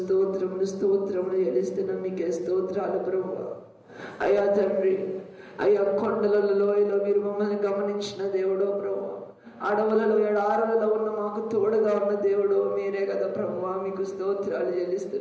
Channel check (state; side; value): identical; both; correlation 1.00